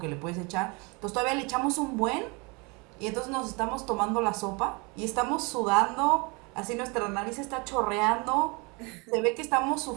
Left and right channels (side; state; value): left; quieter; 29.3 dB